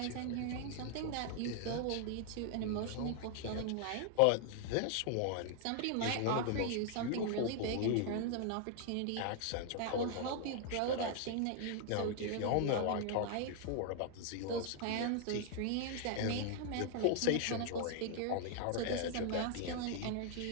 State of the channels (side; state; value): both; different; correlation 0.00